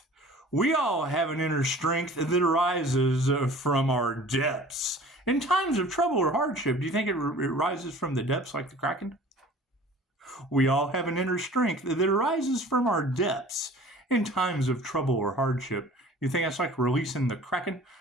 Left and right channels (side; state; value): both; normal; correlation 0.46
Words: We all have an inner strength that arises from our depths. In times of trouble or hardship, do you think it rises from the depths like the Kraken? We all have an inner strength that arises from our depths in times of trouble or hardship. You think that's like releasing the Kraken?